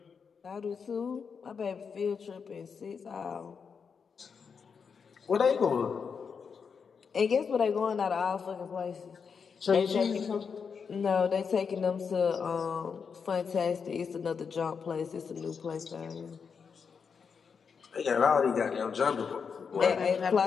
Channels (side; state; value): right; quieter; 6.1 dB